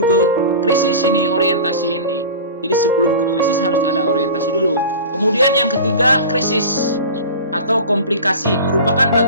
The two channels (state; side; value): inverted; both; correlation -0.34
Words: ke krisis ini, orientasi ini. Jadi sebelum ke krisis harus ada orientasi dulu. Kemudian yang ketiga, krisis atau komplikasi. Merupakan